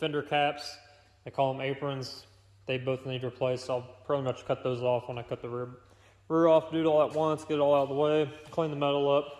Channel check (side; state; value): both; identical; correlation 1.00